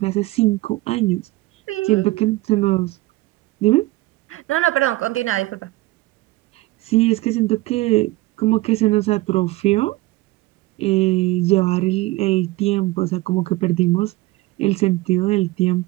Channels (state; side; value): quieter; left; 19.5 dB